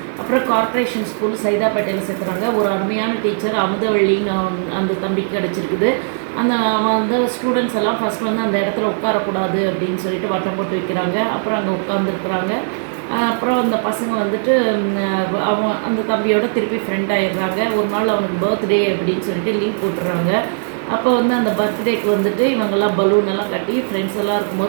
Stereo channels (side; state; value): left; silent; 59 dB below the other